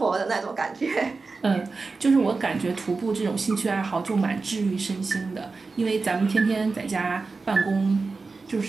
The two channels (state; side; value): quieter; left; 4.1 dB